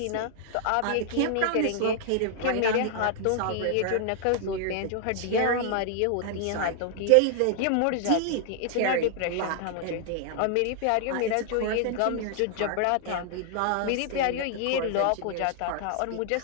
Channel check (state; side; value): different; both; correlation 0.00